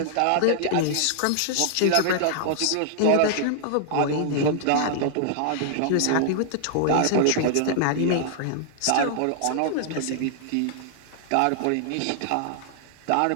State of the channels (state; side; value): different; both; correlation -0.01